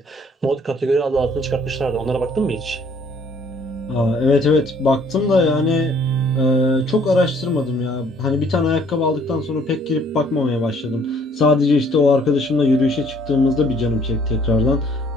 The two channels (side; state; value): both; normal; correlation 0.60